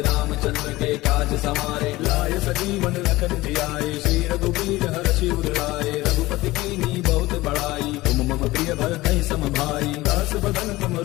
रामचंद्र के काज समारे। लाय सजीवन लखन जियाए श्री रघुवीर हर्षि उर लाए। रघुपति कीन्ही बहुत बड़ाई तुम मम प्रिय भरतहि सम भाई। दास बदन तुम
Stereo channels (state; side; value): quieter; right; 19.0 dB